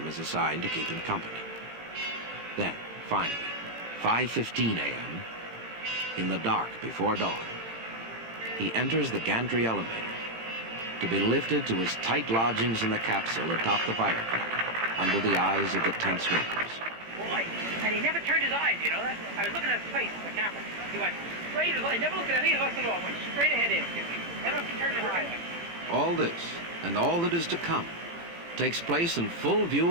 is assigned to keep him company. Then, finally, 5:15 a.m., in the dark before dawn, he enters the gantry elevator to be lifted to his tight lodgings in the capsule atop the firecracker under the eyes of the tense workers. Boy, and he never turned his eyes, you know. I was looking at his face in the camera. He went straight as well. He never looked at any of us at all. Went straight ahead in. Never turned his eyes. All this, and all that is to come, takes place in full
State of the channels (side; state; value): left; late; 18 ms